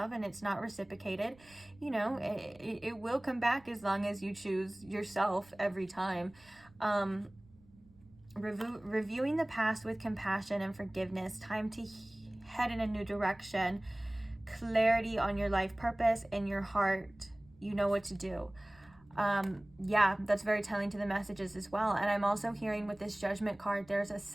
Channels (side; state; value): right; noise; rumble, 27 dB below the sound